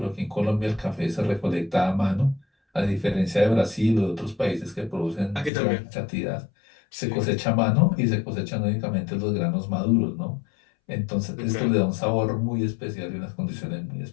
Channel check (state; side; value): drops out; right; at 5.5 s